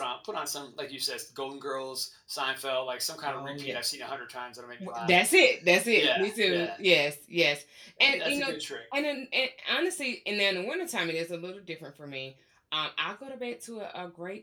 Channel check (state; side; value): identical; both; correlation 1.00